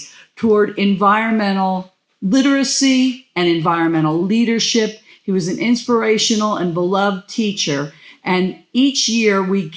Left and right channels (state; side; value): identical; both; correlation 1.00